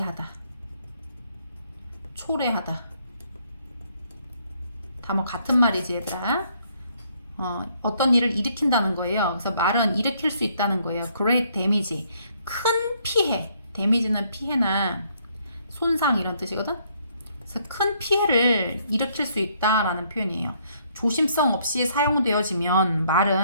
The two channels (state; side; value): inverted; both; correlation -0.68